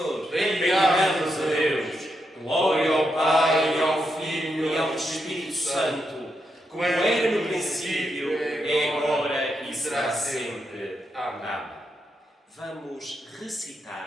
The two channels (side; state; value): both; normal; correlation 0.83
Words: Bendigamos a Deus. Glória ao Pai, e ao Filho e ao Espírito Santo, como era no princípio, é agora e será sempre. Amém. Vamos